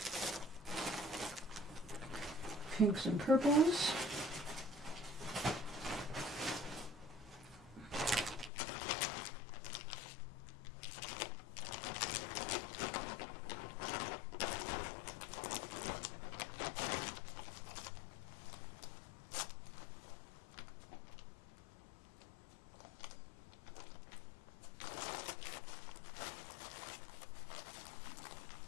Pinks and purples.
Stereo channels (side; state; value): right; drops out; at 8.5 s